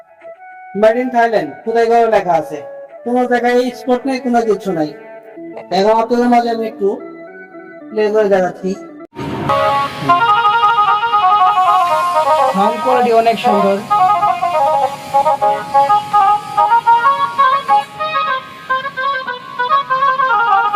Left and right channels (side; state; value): both; identical; correlation 1.00